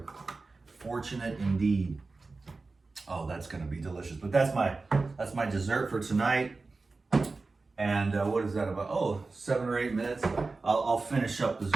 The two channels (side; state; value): left; quieter; 3.8 dB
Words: fortunate indeed. Oh, that's gonna be delicious. But that's my dessert for tonight. And what is that about? Oh, 7 or 8 minutes. I'll finish up this